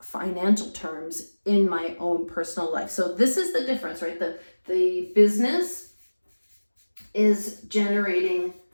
terms in my own personal life. So this is the difference, right? The business is generating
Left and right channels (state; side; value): inverted; both; correlation -1.00